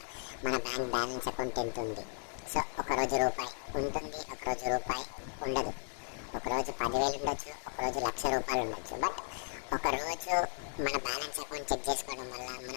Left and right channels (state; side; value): silent; right; 54 dB below the other